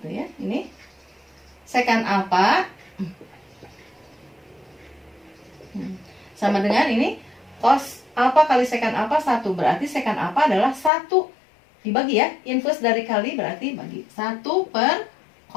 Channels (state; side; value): drops out; right; at 10.9 s